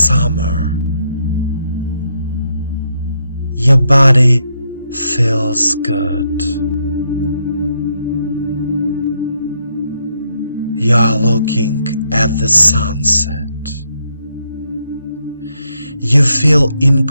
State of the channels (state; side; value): inverted; both; correlation -0.78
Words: Your body feels good. You are looking at the sunset. You feel